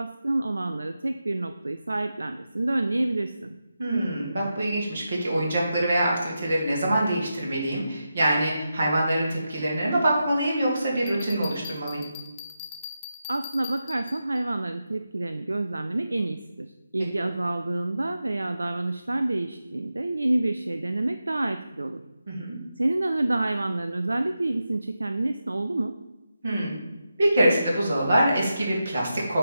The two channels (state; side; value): inverted; both; correlation -0.89